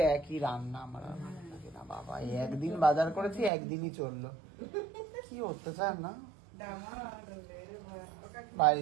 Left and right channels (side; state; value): left; drops out; at 3.5 s